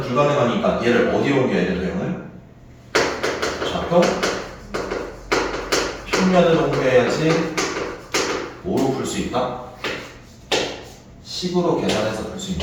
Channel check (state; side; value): identical; both; correlation 1.00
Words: 불가능하니까 얘를 어디로 옮겨야 돼? 도형을 좌표 평면으로 옮겨야지. 뭐로 풀 수 있다? 식으로 계산해서 풀 수